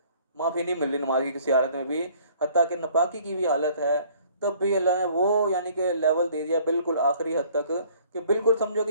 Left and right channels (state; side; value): inverted; both; correlation -0.57